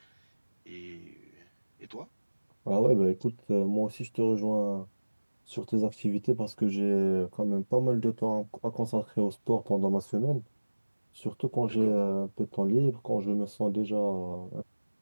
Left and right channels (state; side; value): inverted; both; correlation -1.00